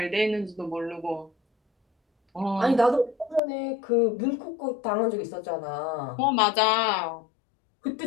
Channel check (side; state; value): right; drops out; at 3.4 s